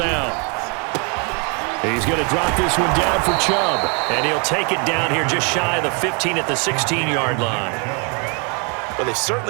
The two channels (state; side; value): quieter; left; 35.3 dB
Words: He's going to drop this one down for Chubb. And he'll take it down here just shy of the 15 at the 16-yard line. Well, they've